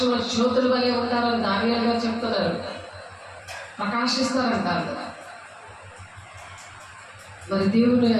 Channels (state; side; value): identical; both; correlation 1.00